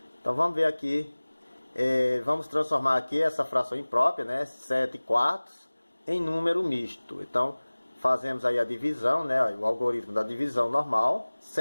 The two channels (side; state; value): both; inverted; correlation -1.00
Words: Então, vamos ver aqui. Vamos transformar aqui essa fração imprópria, né, 7 quartos, em número misto. Então, fazemos aí a divisão, né, o algoritmo da divisão normal.